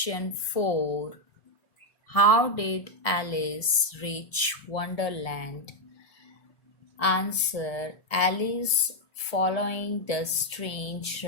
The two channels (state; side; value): late; right; 1.6 ms